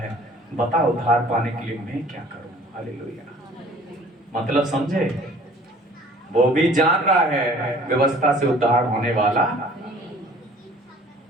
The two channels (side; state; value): both; normal; correlation 0.51